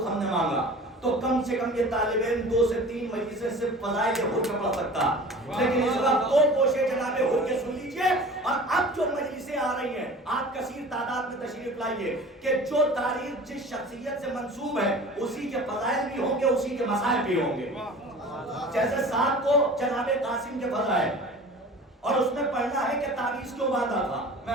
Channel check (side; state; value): both; normal; correlation 0.41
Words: ہم نے مانگا، تو کم سے کم یہ طالب علم 2 سے 3 مجلسیں صرف فضائل حر کا پڑھ سکتا، لیکن اس وقت 2 کوشے جناب حر کے سن لیجئے۔ اور اب جو مجلسیں آ رہی ہیں آپ کثیر تعداد میں تشریف لائیے کہ جو تاریخ جس شخصیت سے منسوب ہے اسی کے فضائل بھی ہوں گے، اسی کے مسائل بھی ہوں گے۔ جیسے 7 کو جناب قاسم کے فضائل، اور اس میں پڑھنا ہے کہ تعویذ کیوں باندھا تھا، میں